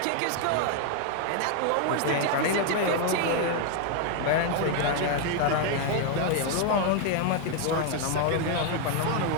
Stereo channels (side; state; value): both; different; correlation 0.00